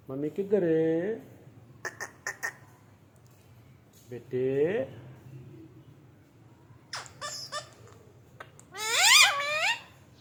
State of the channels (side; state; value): both; identical; correlation 1.00